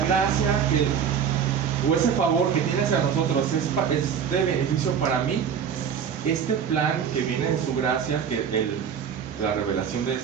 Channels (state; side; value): quieter; left; 7.6 dB